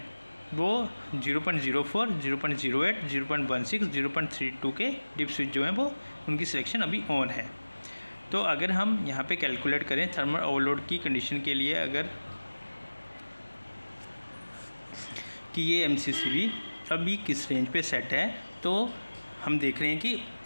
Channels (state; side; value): inverted; both; correlation -1.00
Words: वो 0.04, 0.08, 0.16, 0.32 के डिप स्विच जो हैं वो उनकी सिलेक्शन अभी ऑन है। तो अगर हम यहाँ पे कैलकुलेट करें थर्मल ओवरलोड की कंडीशन के लिए, अगर कि ये MCCB अभी किस रेंज पे सेट है, तो हम देख रहे हैं कि